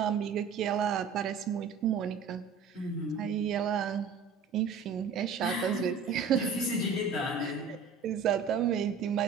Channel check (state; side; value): quieter; left; 5.6 dB